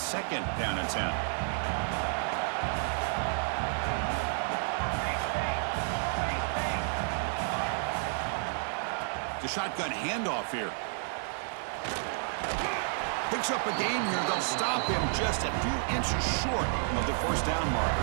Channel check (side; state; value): left; silent; 57 dB below the other